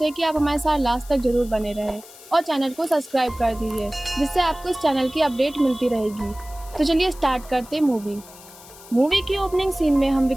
है कि आप हमारे साथ लास्ट तक जरूर बने रहें और चैनल को सब्सक्राइब कर दीजिए, जिससे आपको इस चैनल की अपडेट मिलती रहेगी। तो चलिए स्टार्ट करते हैं मूवी की ओपनिंग सीन में हम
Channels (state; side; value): noise; left; hiss, 20 dB below the sound